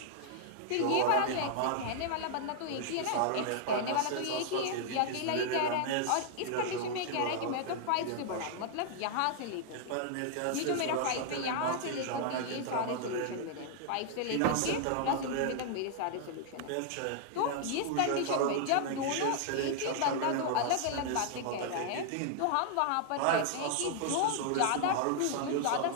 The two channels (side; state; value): both; different; correlation 0.00